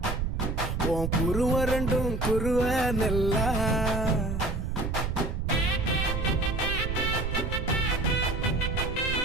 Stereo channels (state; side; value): noise; right; rumble, 1 dB below the sound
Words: உன் குருவ ரெண்டும் குருவ நெல்லா